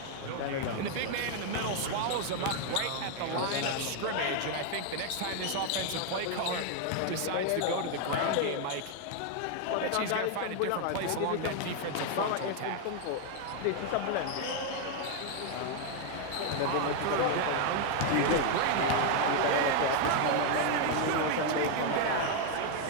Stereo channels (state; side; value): different; both; correlation 0.01